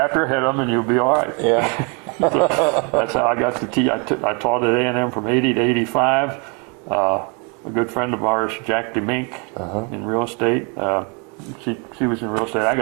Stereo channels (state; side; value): quieter; left; 34.8 dB